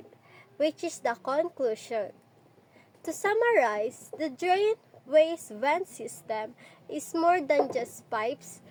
which is the conclusion. To summarize, the drain waste vent system is more than just pipes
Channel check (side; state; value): both; identical; correlation 1.00